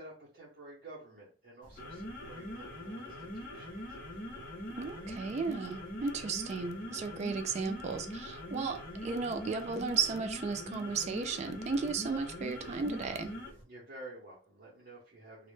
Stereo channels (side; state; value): left; quieter; 3.4 dB